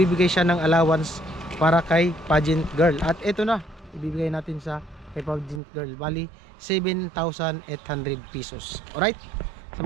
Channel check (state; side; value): drops out; left; at 5.6 s